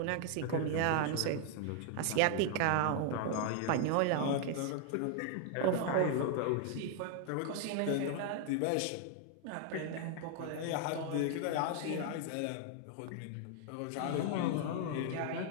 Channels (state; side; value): different; both; correlation 0.00